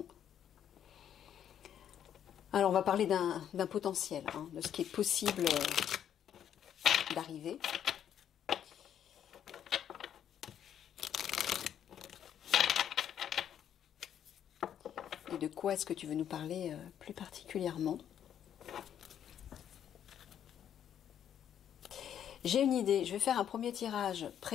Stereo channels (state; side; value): quieter; right; 9.6 dB